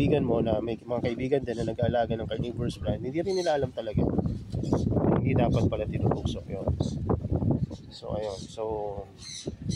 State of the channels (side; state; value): both; identical; correlation 1.00